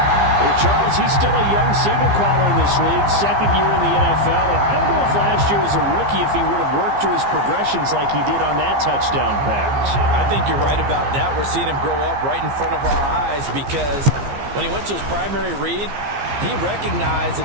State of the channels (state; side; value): late; left; 15 ms